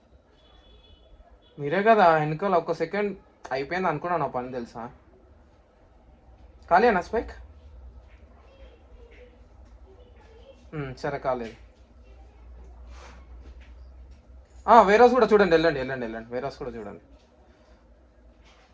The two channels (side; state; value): both; identical; correlation 1.00